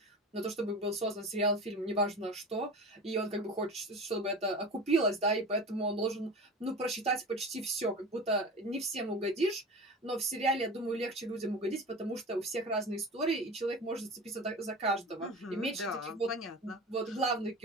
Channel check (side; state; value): both; normal; correlation 0.33